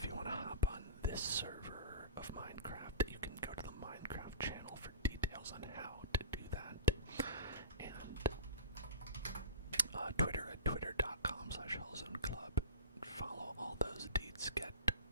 you want to hop on this server of Minecraft. You can go to the Minecraft channel for details on how to do that. And Twitter at twitter.com/HellzoneClub. Follow all those deeds. Get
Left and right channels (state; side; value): inverted; both; correlation -0.36